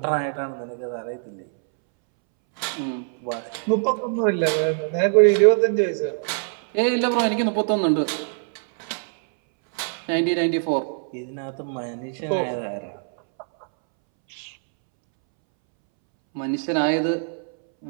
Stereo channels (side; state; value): left; silent; 63 dB below the other